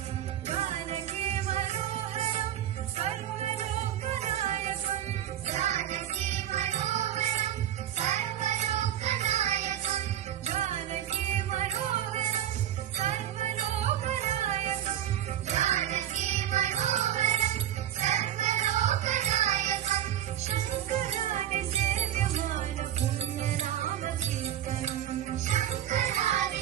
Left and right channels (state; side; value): quieter; left; 11.2 dB